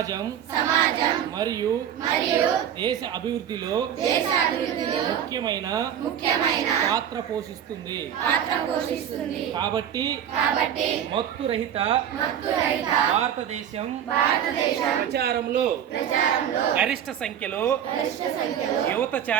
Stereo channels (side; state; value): left; quieter; 9.5 dB